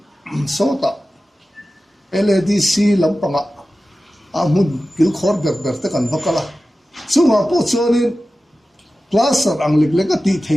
sota LADC lampanga amun kil khor ber te kan vakala chunga po chonin plaster ang liglek ti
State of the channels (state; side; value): normal; both; correlation 0.95